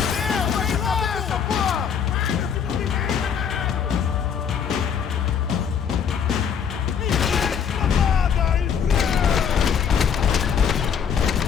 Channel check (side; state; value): right; quieter; 7.4 dB